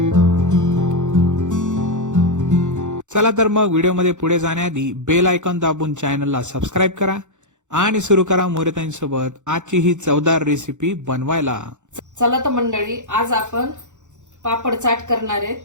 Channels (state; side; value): late; left; 0.85 ms